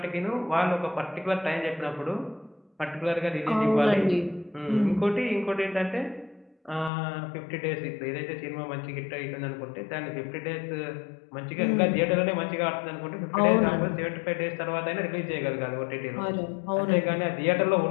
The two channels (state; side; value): drops out; right; at 6.9 s